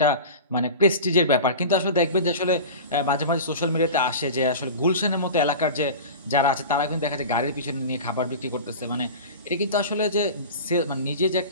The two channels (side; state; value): both; inverted; correlation -0.32